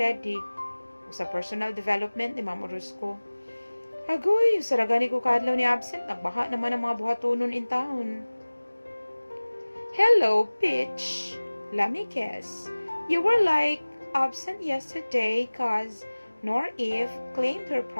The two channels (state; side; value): inverted; both; correlation -1.00